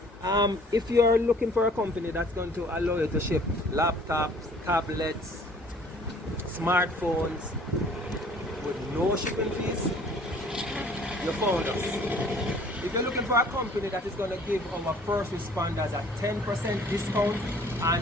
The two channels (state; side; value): normal; both; correlation 0.54